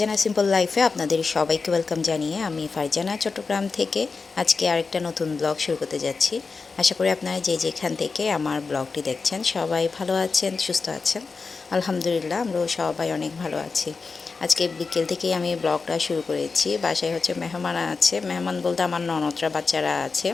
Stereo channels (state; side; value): quieter; right; 4.5 dB